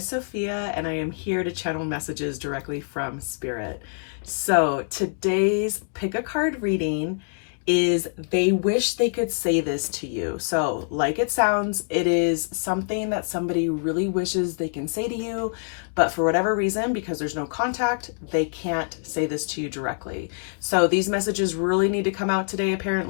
Sophia, and I am here to channel messages directly from Spirit. So today's pick a card reading is they wish they could say this to you. So like it sounds, it is something that somebody really wishes they can say to you, but for whatever reason, because there's no contact, they can't say this to you directly. So these messages really need to come out today.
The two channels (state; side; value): silent; right; digital silence